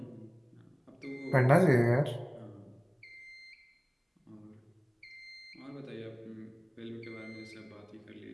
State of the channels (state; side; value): identical; both; correlation 1.00